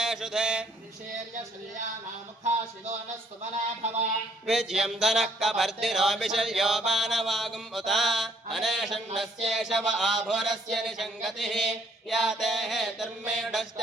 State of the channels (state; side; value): normal; both; correlation 0.63